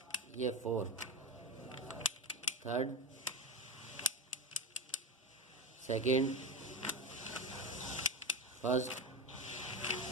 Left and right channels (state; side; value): normal; both; correlation 0.20